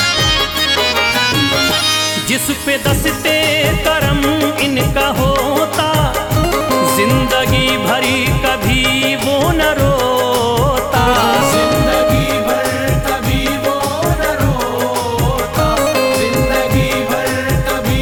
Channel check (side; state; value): both; identical; correlation 1.00